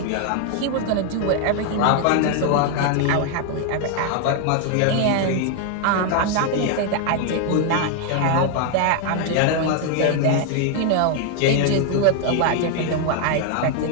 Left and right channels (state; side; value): different; both; correlation 0.00